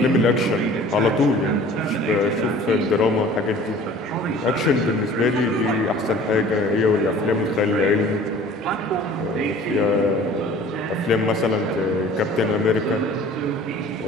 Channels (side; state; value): both; normal; correlation 0.47